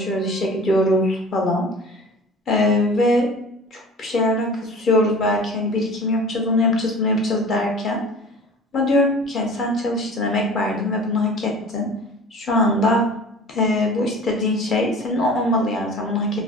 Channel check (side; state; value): both; normal; correlation 0.41